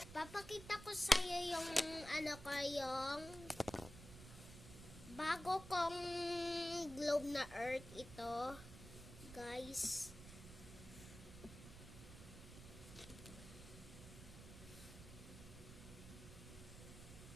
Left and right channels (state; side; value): noise; right; rumble, 13 dB below the sound